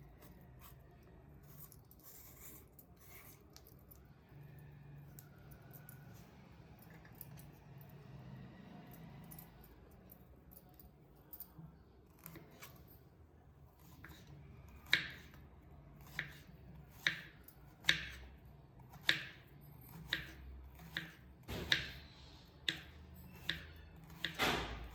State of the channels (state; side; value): identical; both; correlation 1.00